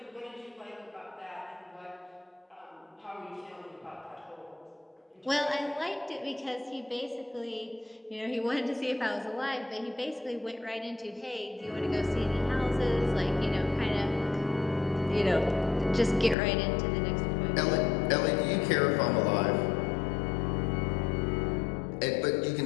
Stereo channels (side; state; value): right; drops out; at 16.4 s